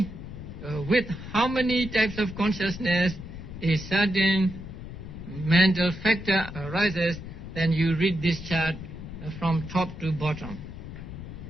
with how many types of consciousness a certain mental factor arises, then you read this chart from top to bottom.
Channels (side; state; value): left; noise; rumble, 11 dB below the sound